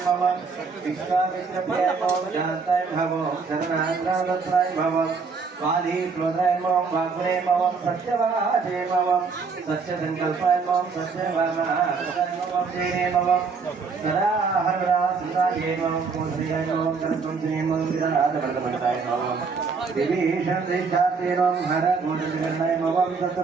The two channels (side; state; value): left; quieter; 5.0 dB